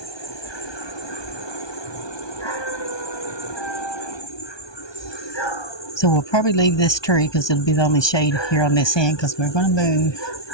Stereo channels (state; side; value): late; right; 1.2 ms